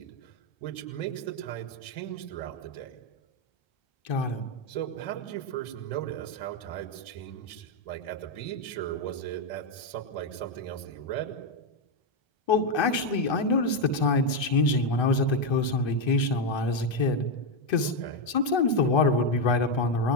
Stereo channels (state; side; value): late; right; 1.3 ms